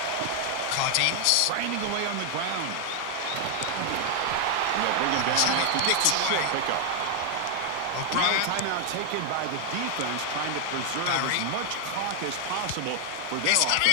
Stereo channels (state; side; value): different; both; correlation 0.00